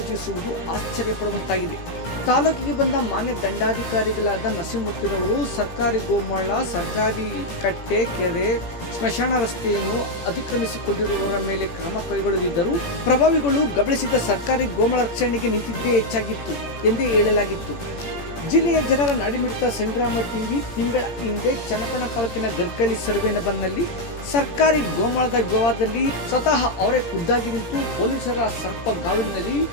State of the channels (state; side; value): late; right; 18 ms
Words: ಆಶ್ಚರ್ಯಪಡುವಂತಾಗಿದೆ. ತಾಲೂಕಿಗೆ ಬಂದ ಮಾನ್ಯ ದಂಡಾಧಿಕಾರಿಗಳಾದ ನರಸಿಂಹಮೂರ್ತಿರವರು ಸರ್ಕಾರಿ ಗೋಮಾಳ, ಸರ್ಕಾರಿ ಕಟ್ಟೆ, ಕೆರೆ, ಸ್ಮಶಾನ ರಸ್ತೆಯನ್ನು ಅತಿಕ್ರಮಿಸಿಕೊಂಡಿರುವವರ ಮೇಲೆ ಕ್ರಮ ಕೈಗೊಳ್ಳದಿದ್ದರೂ ಪ್ರಭಾವಿಗಳು ಗಮನಿಸಿದ ಸರ್ಕಾರಿ ಗೋಮಾಳ ರಕ್ಷಣೆಗೆ ನಿಂತಿದ್ದೇ ಹೆಚ್ಚಾಗಿತ್ತು ಎಂದೇ ಹೇಳಲಾಗಿತ್ತು. ಜಿಲ್ಲೆಯ ಜನರ ನಾಡಿಮಿಡಿತ ಸಂಗ್ರಾಮ ಟಿವಿ ತಿಂಗಳ ಹಿಂದೆ ಚನ್ನಪಟ್ಟಣ ತಾಲೂಕಿನ ಗರ್ಕಳ್ಳಿ ಸರ್ವೇನಬರ್ನಲ್ಲಿ ಸರ್ಕಾರಿ ಗೋಮಾಳದ ವಿವಾದದಲ್ಲಿ ಸ್ವತಃ ಅವರೇ ಖುದ್ದಾಗಿ ನಿಂತು ಪೊಲೀಸರ ಸರ್ಪಗಾವಿನಲ್ಲಿ